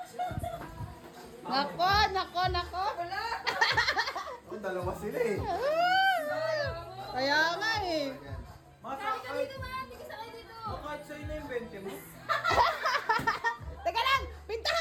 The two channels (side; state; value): both; identical; correlation 1.00